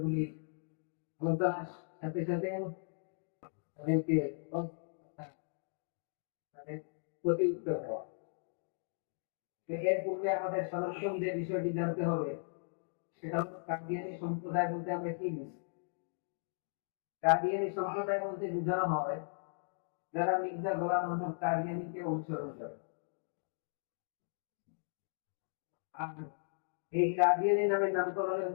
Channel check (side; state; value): right; silent; digital silence